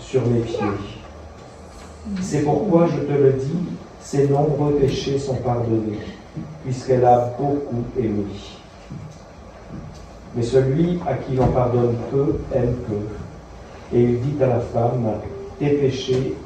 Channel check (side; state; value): both; identical; correlation 1.00